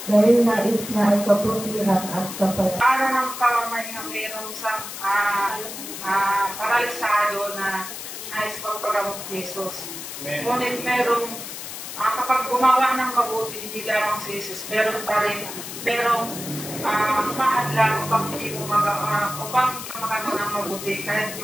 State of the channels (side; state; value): left; noise; hiss, 9 dB below the sound